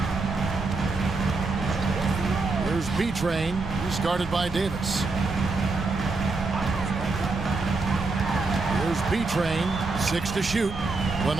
Here's B-Train. He's guarded by Davis. Here's B-Train. 6 to shoot. A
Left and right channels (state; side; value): quieter; left; 3.7 dB